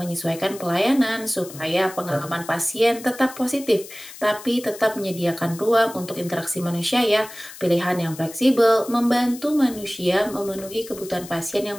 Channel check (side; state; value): left; noise; hiss, 16 dB below the sound